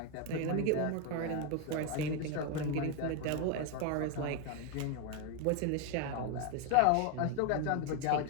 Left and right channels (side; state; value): both; different; correlation 0.01